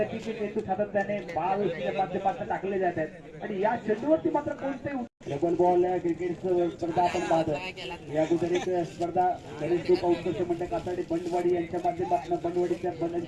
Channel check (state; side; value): identical; both; correlation 1.00